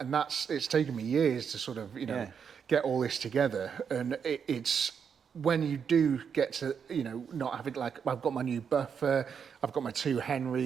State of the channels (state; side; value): quieter; left; 7.0 dB